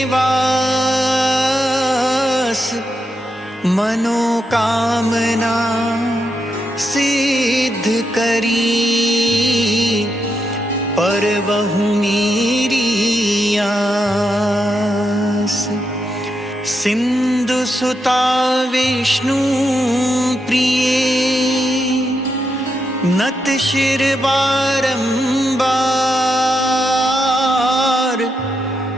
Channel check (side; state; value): both; normal; correlation 0.83